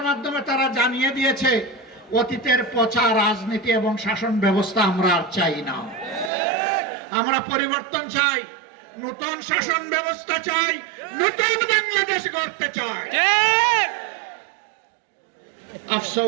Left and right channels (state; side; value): drops out; left; at 6.3 s